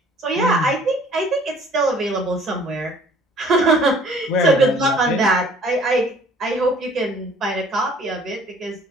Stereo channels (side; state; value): both; normal; correlation 0.55